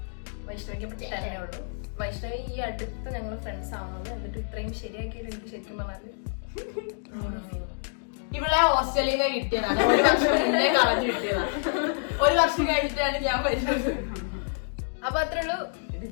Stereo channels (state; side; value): silent; right; digital silence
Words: വൈഷ്ണവിക്ക് 10 ഉള്ളൂ. വൈഷ്ണവി ഈ അടുത്ത് ഞങ്ങൾ ഫ്രണ്ട്സ് ആവുന്നത്. എന്നിട്ട് ഇത്രയും ശരിയാക്കിയിട്ട് എനിക്ക് ശരിക്കും പറഞ്ഞാല് ഇവിടെ ഹോസ്റ്റലിൽ നിന്ന് കിട്ടിയതാണ്. ഒരു വർഷം മുന്നേ കളഞ്ഞു കിട്ടിയതാണ്. ഒരു വർഷം കഴിഞ്ഞിട്ടാണ് ഞാൻ വരുന്നത്. അപ്പൊ അത്രേ ഉള്ളൂ.